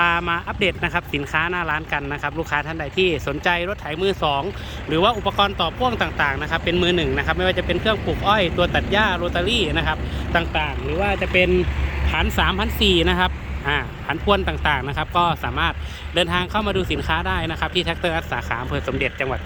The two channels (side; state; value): both; identical; correlation 1.00